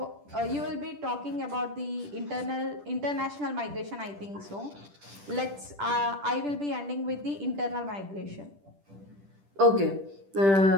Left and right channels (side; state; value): left; late; 10 ms